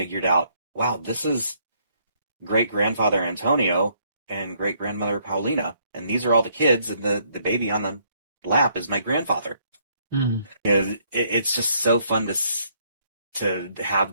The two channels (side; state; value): both; inverted; correlation -0.68